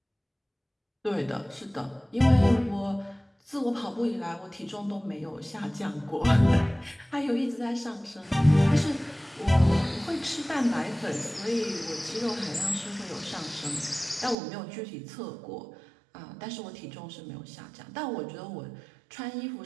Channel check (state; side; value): drops out; left; at 14.4 s